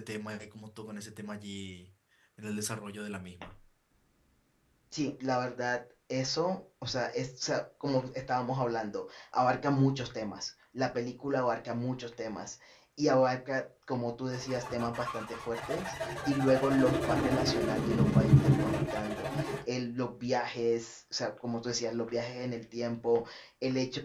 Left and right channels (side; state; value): both; identical; correlation 1.00